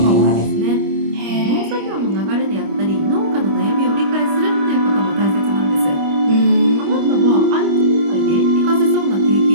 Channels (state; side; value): late; left; 25 ms